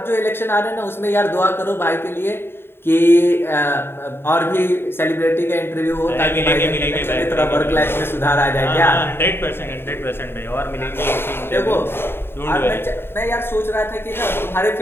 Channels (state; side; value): late; right; 0.11 ms